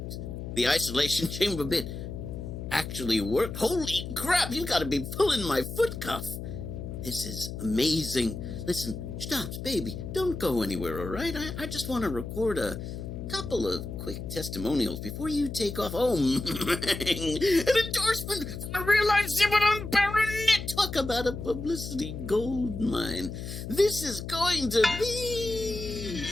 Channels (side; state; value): left; noise; hum, 7 dB below the sound